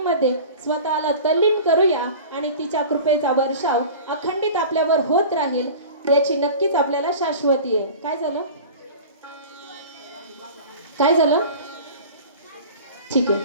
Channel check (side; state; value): both; inverted; correlation -0.38